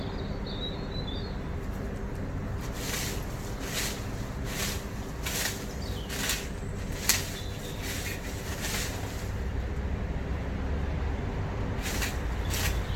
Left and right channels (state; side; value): identical; both; correlation 1.00